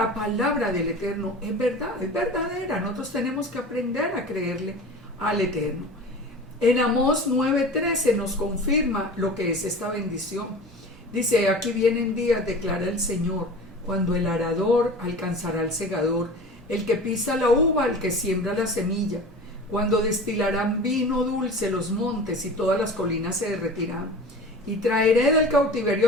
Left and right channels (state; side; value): normal; both; correlation 0.36